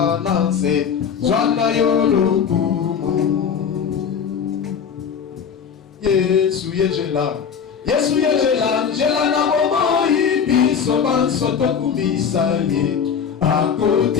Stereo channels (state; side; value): quieter; right; 7.2 dB